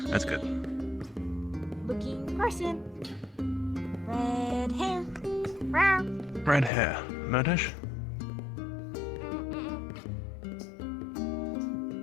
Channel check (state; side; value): drops out; right; at 6.7 s